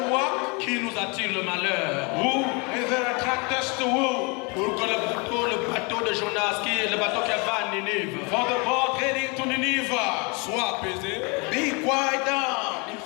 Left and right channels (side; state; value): right; quieter; 30.7 dB